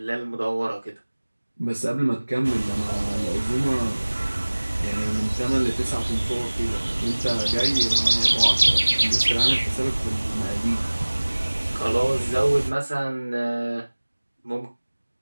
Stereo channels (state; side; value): inverted; both; correlation -1.00